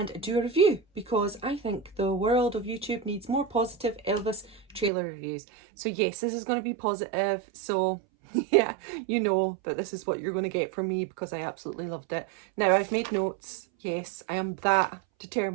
do a review because I think the world of YouTube needs more positive Elvis trailer reviews. So yes, this is going to be positive. So yeah, you know that this is what you're going to get from me because I absolutely loved it. Now I've made notes. Yes, I am that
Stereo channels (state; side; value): drops out; left; at 4.9 s